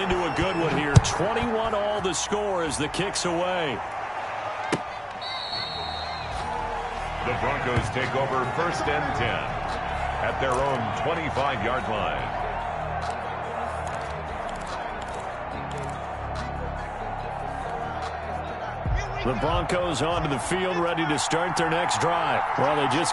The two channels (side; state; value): both; identical; correlation 1.00